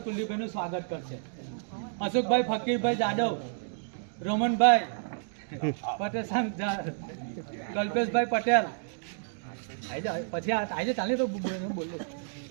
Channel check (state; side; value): silent; left; digital silence